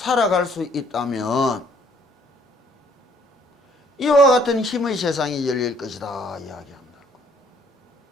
수 있다면 이와 같은 힘의 세상이 열릴 것이다 이야기한다고.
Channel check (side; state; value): both; normal; correlation 0.63